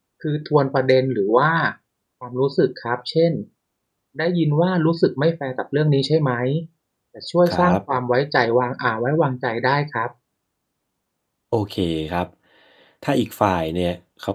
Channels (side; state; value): both; identical; correlation 1.00